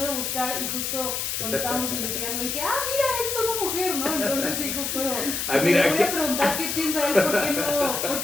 de buscar y justo cuando estábamos investigando dije, mira, él es una mujer, ¿no? Entonces sí, justo mira, me voy a preguntar qué piensa él, ¿por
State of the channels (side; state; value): left; noise; hiss, 2 dB below the sound